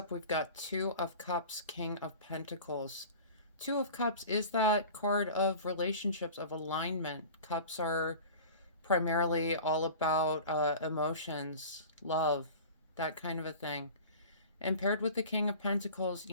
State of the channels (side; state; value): both; inverted; correlation -0.38